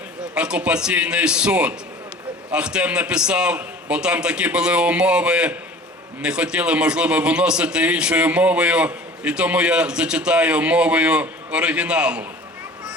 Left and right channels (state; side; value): normal; both; correlation 0.44